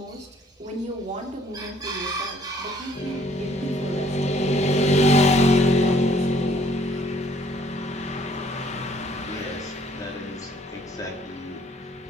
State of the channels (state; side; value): normal; both; correlation 0.61